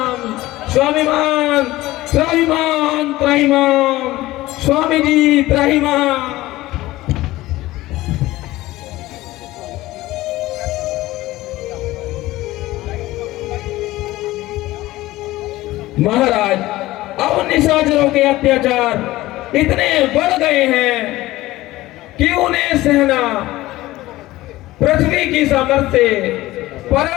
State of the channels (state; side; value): quieter; right; 17.5 dB